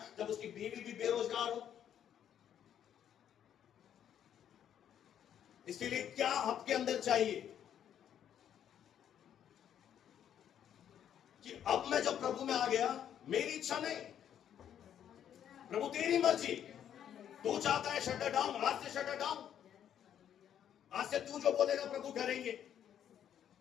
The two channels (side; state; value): right; quieter; 9.7 dB